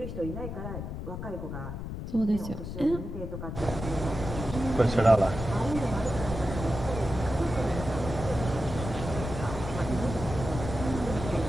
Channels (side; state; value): left; noise; rumble, 7 dB below the sound